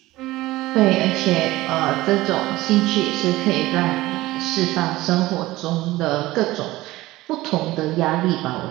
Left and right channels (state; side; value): quieter; left; 18.0 dB